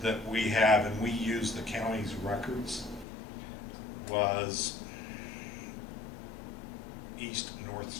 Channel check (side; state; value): right; drops out; at 3.1 s